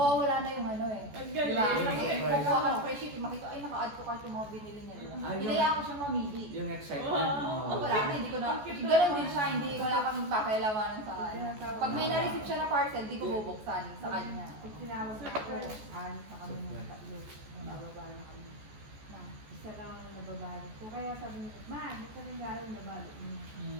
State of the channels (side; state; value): left; late; 14 ms